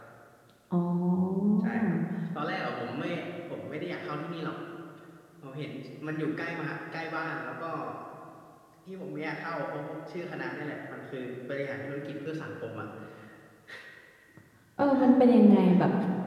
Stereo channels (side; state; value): both; identical; correlation 1.00